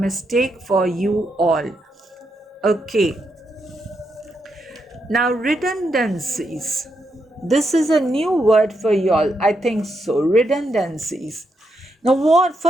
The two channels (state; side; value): normal; both; correlation 0.81